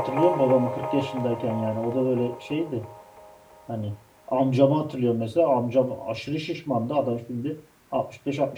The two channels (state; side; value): identical; both; correlation 1.00